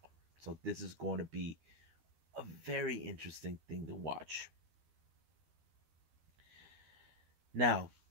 So this is going to be a very interesting thing to watch. Now,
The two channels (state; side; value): late; left; 13 ms